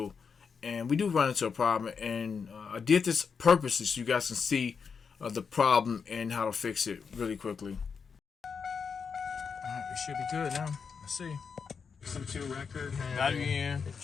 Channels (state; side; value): quieter; right; 5.9 dB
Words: And we do run into a problem, and I did this purposely so you guys can see the problem and how to fix it really quickly. Alright, we should be good now. Let's see. Listen to record. Battery in.